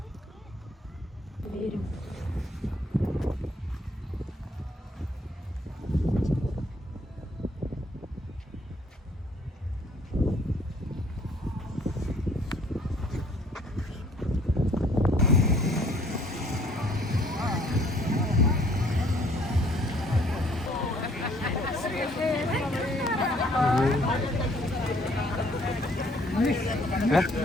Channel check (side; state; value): both; normal; correlation 0.61